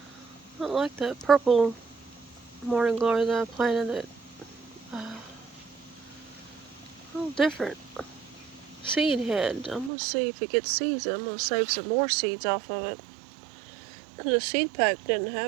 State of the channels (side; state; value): left; drops out; at 9.9 s